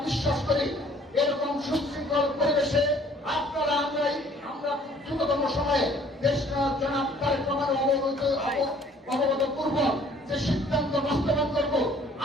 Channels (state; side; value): normal; both; correlation 0.56